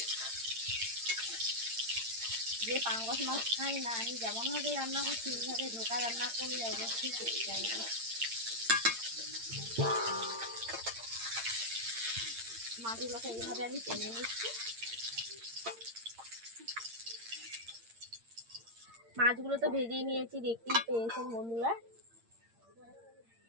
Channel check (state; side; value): late; left; 8.7 ms